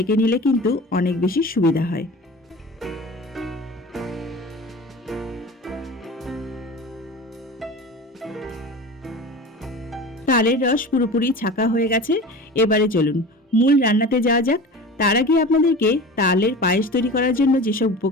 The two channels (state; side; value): normal; both; correlation 0.35